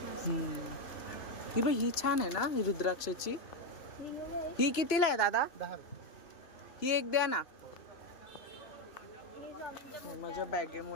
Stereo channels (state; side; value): late; right; 3.0 ms